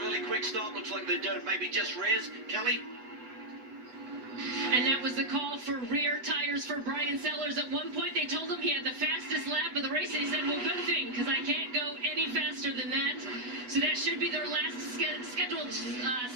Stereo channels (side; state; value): left; late; 8.1 ms